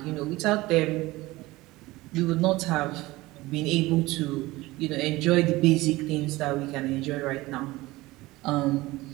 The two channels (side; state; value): left; quieter; 19.6 dB